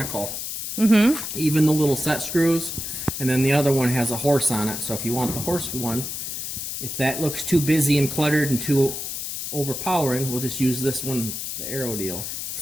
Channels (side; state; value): left; noise; hiss, 5 dB below the sound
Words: Even the little set screws. And then the other one has a horse on it. So if you want the horse one, if that looks too busy and cluttered and too overpowering, we'll just use this one, the arrow deal.